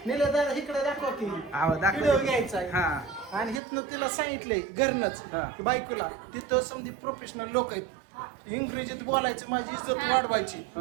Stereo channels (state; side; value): drops out; left; at 3.6 s